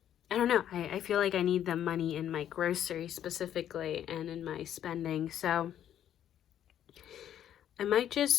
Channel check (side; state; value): right; quieter; 10.6 dB